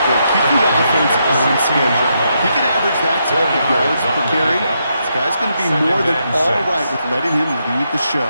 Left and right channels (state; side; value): inverted; both; correlation -0.80